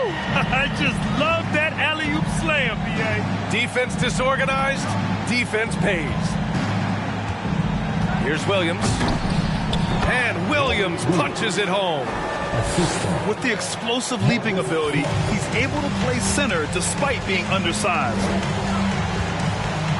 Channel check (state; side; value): identical; both; correlation 1.00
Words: I just love that alley-oop slam, B.A. Defense disorganized, defense pays. Here's Williams. And Williams punches it home. With the explosive leaping ability, he's able to play center despite being undersized.